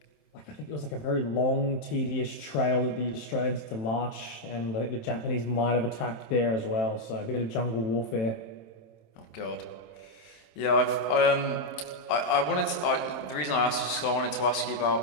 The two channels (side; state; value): right; late; 27 ms